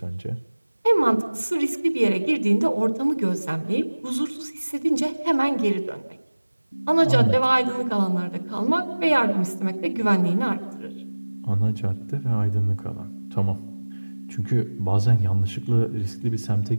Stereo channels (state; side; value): inverted; both; correlation -1.00